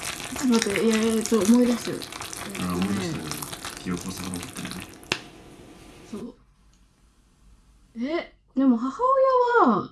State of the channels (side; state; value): both; identical; correlation 1.00